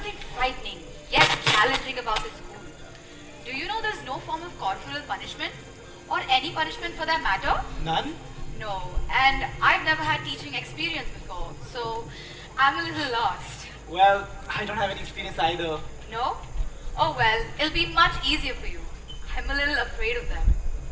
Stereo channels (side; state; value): both; identical; correlation 1.00